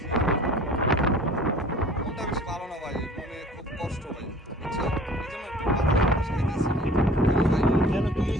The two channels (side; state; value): both; normal; correlation 0.47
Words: মনটা বেশি ভালো না ভাই, মনে খুব কষ্ট ভাই, বুঝছেন? এই জন্য একটু বাতাস খাইতেছি কেন ভাই? কেন, কি